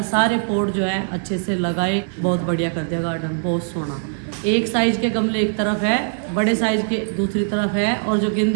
सारे पॉट जो है अच्छे से लगाए, बहुत बढ़िया कर दिया गार्डन, बहुत सोना। एक साइज के गमले एक तरफ है, बड़े साइज के दूसरी तरफ है और जो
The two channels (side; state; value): left; silent; 65 dB below the other